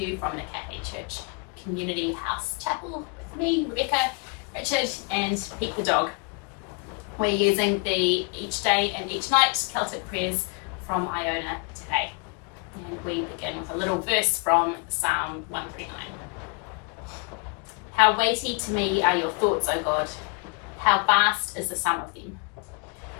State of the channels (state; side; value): quieter; right; 34.8 dB